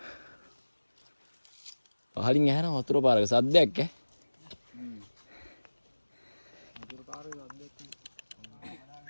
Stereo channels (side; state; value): both; inverted; correlation -1.00